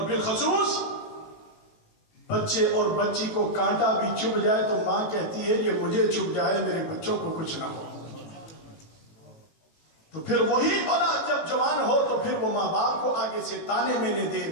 بالخصوص بچے اور بچی کو کانٹا بھی چبھ جائے تو ماں کہتی ہے یہ مجھے چبھ جائے، میرے بچوں کو کچھ نہ ہو۔ تو پھر وہی اولاد جب جوان ہو تو پھر وہ ماں باپ کو آگے سے تانے مینے دے،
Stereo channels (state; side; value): late; right; 18 ms